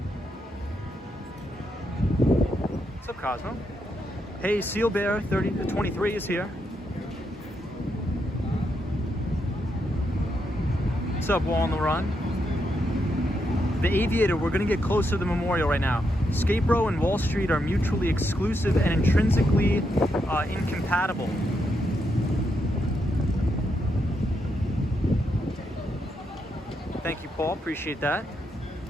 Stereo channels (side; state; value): both; normal; correlation 0.81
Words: What's up, Cosmo? Hey, Seal Bear 23 is here. What's up, Wall on the Run? The Aviator, we're gonna get closer to the memorial right now. Skate Row and Wall Street are mutually exclusive and intrinsically incompatible. Thank you, Paul, appreciate that.